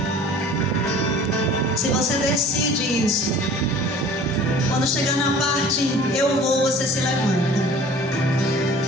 Se você decide isso, quando chegar na parte eu vou, você se levanta.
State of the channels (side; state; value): both; normal; correlation 0.46